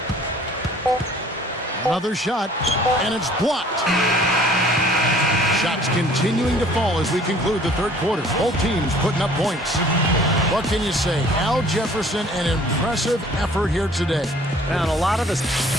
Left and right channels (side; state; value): both; normal; correlation 0.53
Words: Another shot, and it's blocked. Shots continuing to fall as we conclude the third quarter. Both teams putting up points. What can you say? Al Jefferson, an impressive effort here today. And a lot of us.